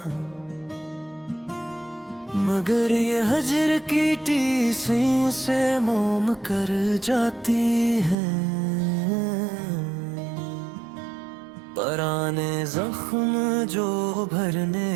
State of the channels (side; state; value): left; drops out; at 8.2 s